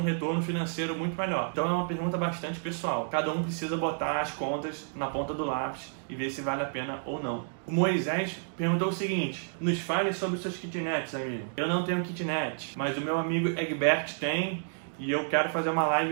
retorno financeiro muito melhor. Então é uma pergunta bastante pessoal. Cada um precisa botar as contas na ponta do lápis e ver se vale a pena ou não. O Moisés perguntou o seguinte: nos fale sobre seus kitnets, amigo. Eu não tenho kitnet, mas o meu amigo Egbert tem e eu quero fazer uma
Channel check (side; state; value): left; silent; digital silence